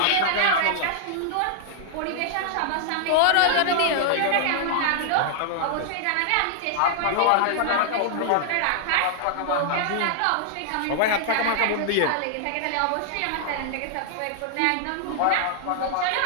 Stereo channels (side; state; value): both; different; correlation -0.01